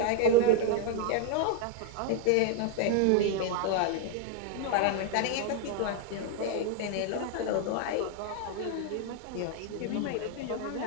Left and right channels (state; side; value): different; both; correlation 0.00